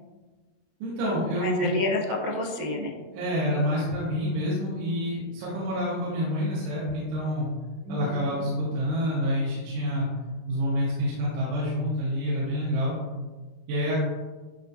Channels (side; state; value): left; late; 25 ms